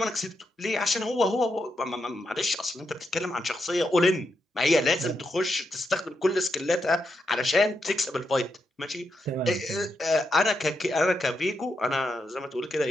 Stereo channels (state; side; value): normal; both; correlation 0.83